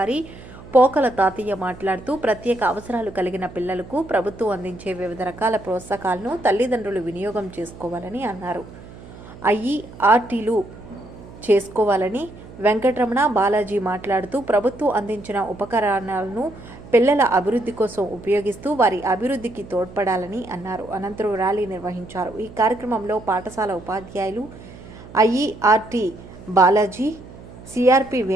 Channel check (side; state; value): right; noise; hum, 17 dB below the sound